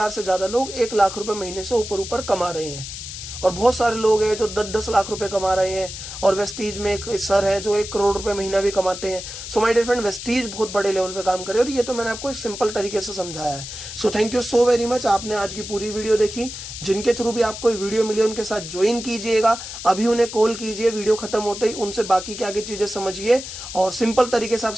से ज्यादा लोग 1 लाख रुपए महीने से ऊपर कमा रहे हैं, और बहुत सारे लोग हैं जो 10-10 लाख रुपए कमा रहे हैं, और वेस्टीज में एक सर हैं जो 1 करोड़ रुपए महीना भी कमाते हैं। So my dear friend, Vestige बहुत बड़े लेवल पे काम कर रहे हैं, और ये तो मैंने आपको एक सिंपल तरीके से समझाया है। So thank you so very much, आपने आज की पूरी वीडियो देखी। जिनके थ्रू भी आपको वीडियो मिली उनके साथ ज्वाइन कीजिएगा, अभी उन्हें कॉल कीजिए वीडियो खत्म होते ही, उनसे बाकी क्या क्या चीजें समझिए, और सिंपल तरीके से आप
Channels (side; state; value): left; noise; hiss, 9 dB below the sound